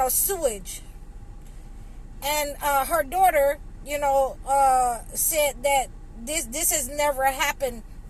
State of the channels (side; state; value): both; identical; correlation 1.00